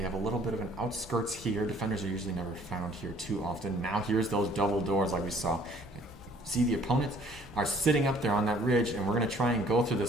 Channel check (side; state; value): both; normal; correlation 0.57